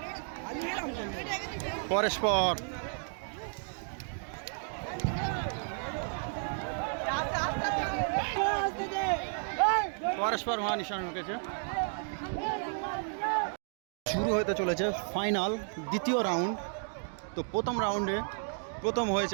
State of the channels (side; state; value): left; silent; 56 dB below the other